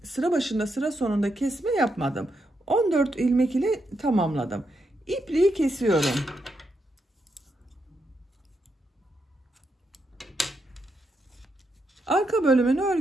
sıra başında sıra sonunda kesme yapmadım. 14 ilmek ile tamamladım. İpliği kesiyorum. Arka bölümün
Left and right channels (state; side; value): normal; both; correlation 0.82